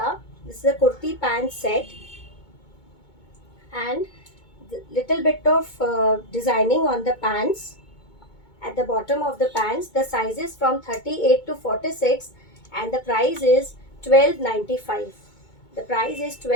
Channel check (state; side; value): late; right; 2.2 ms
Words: This is a kurti pant set, and the little bit of designing on the pants at the bottom of the pants. The sizes from 38 to 46, and the price is 12.95. The price is